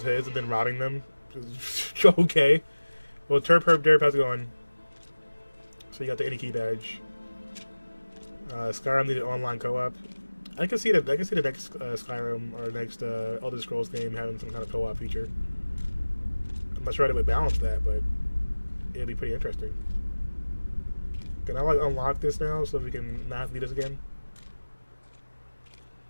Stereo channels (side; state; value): both; inverted; correlation -1.00